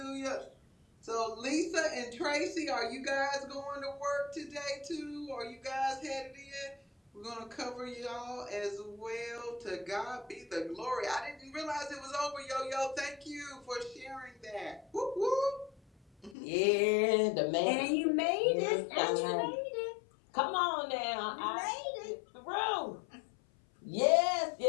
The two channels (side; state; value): right; drops out; at 16.4 s